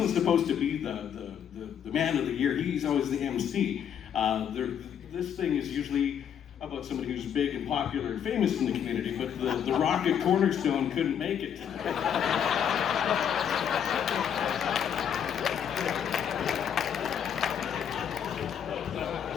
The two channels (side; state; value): right; quieter; 8.6 dB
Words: supposed to be the man of the year. He's always the MC. This thing is usually about somebody who's big and popular and famous in the community, but the Rocket Cornerstone couldn't make it today.